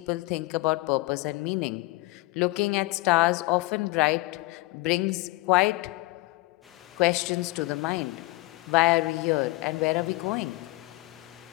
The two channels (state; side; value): quieter; right; 21.8 dB